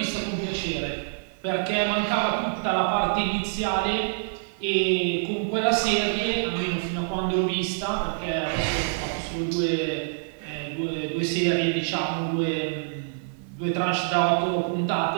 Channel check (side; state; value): left; silent; 57 dB below the other